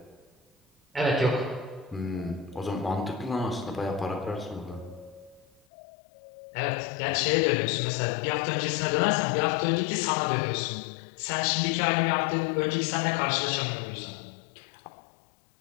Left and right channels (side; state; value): right; drops out; at 5.6 s